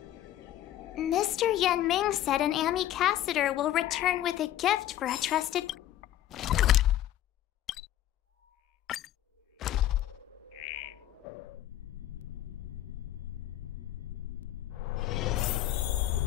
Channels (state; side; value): quieter; right; 12.9 dB